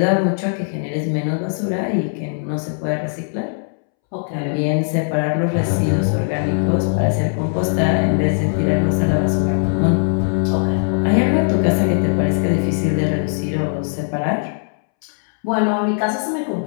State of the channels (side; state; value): right; silent; 66 dB below the other